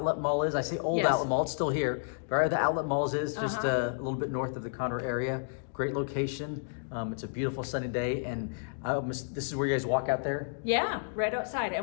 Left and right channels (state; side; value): silent; right; digital silence